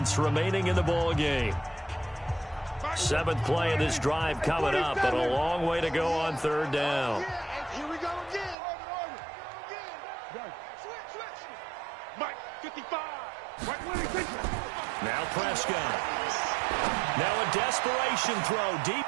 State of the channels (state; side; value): drops out; left; at 8.6 s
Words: remaining in the ball game. 7th play of this drive coming up, but a long way to go on 3rd down. Here we go again. Switch. Mike, 55. Now Prescott. Now a desperation throw deep.